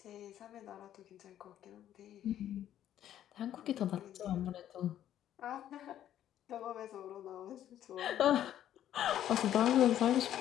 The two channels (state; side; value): quieter; right; 11.3 dB